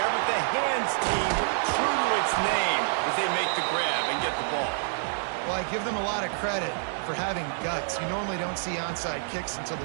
but the hands team true to its name as they make the grab and get the ball. Well, I give them a lot of credit for having guts. You normally don't see onside kicks until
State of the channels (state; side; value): silent; left; 60 dB below the other